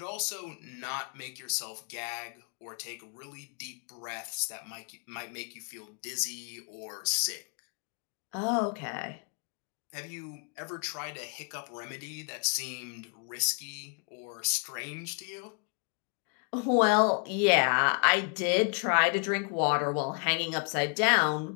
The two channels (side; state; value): right; quieter; 38.7 dB